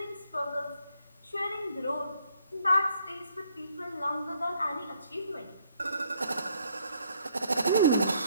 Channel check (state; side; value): inverted; both; correlation -0.69